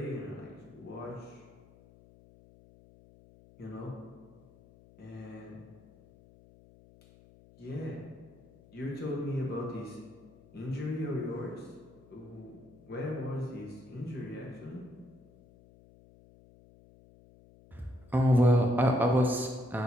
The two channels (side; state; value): left; noise; hum, 24 dB below the sound